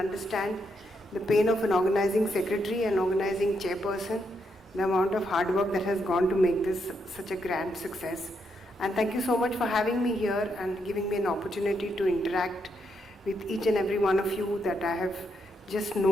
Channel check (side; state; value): both; normal; correlation 0.79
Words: the pain of an organizing secretary and organizing chairperson, the amount of hard work that has gone to make this such a grand success. And thank you so much for having me here and giving me an opportunity to interact with each and every one of you that I have just